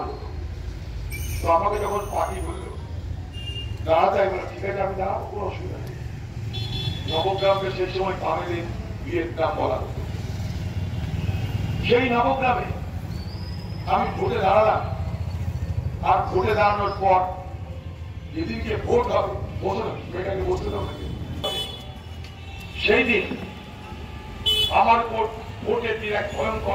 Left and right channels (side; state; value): both; identical; correlation 1.00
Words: হতো। তো আমাকে যখন পার্টি বললো দাঁড়াতে, আমি ঠিক আছে আমি দাঁড়াবো, কোনো অসুবিধা নেই। নবগ্রামকে সেই সময় তামিলের বিয়ের গ্রাম বলা হতো। সেই নবগ্রামে আমি ভোটে দাঁড়ালাম, আর ভোটে দাঁড়ানোর পর যেদিনকে ভোট হবে, মেয়েটাকে বসতে হবে, সেই দিন আমার ভোটের দিন এক